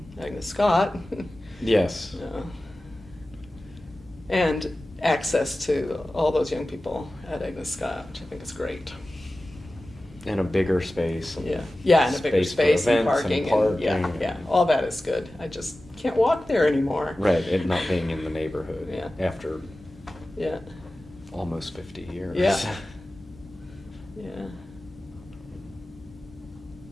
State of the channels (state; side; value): normal; both; correlation 0.95